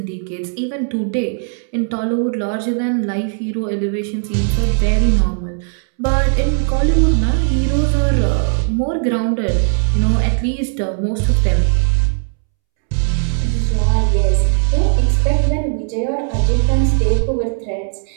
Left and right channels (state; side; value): silent; left; 68 dB below the other